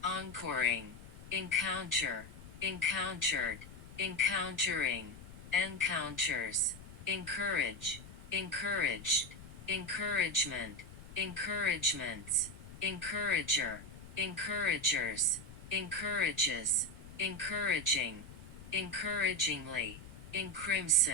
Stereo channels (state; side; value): noise; left; rumble, 16 dB below the sound